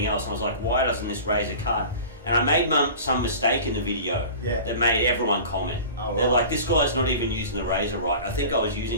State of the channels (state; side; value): inverted; both; correlation -0.37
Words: else. And I was like, why doesn't this razor cut? And I made some mistake in the video that made everyone comment. Oh, They're like, this guy's not even using the razor right. I think I was